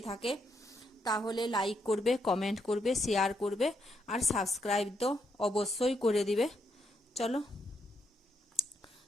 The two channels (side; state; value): both; normal; correlation 0.78